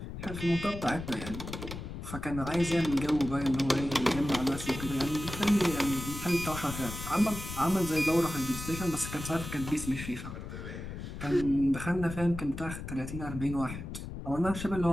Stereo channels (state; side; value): noise; left; rumble, 8 dB below the sound